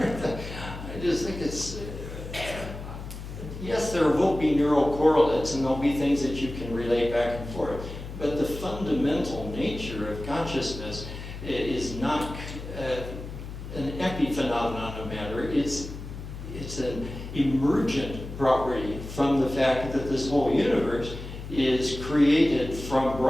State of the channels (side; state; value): left; noise; hum, 10 dB below the sound